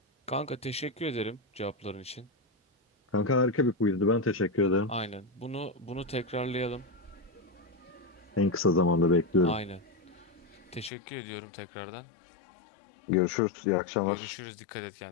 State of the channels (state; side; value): drops out; right; at 10.9 s